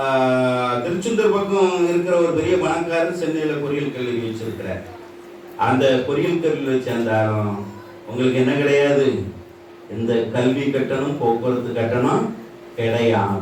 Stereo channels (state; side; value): identical; both; correlation 1.00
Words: திருச்செந்தூர் பக்கம் இருக்கிற ஒரு பெரிய பணக்காரர் சென்னையில் பொறியியல் கல்லூரி வச்சிருக்கிறார். அந்த பொறியியல் கல்லூரியை சேர்ந்தாலும் உங்களுக்கு என்ன கிடையாது, இந்த கல்வி கட்டணம் போக்குவரத்து கட்டணம்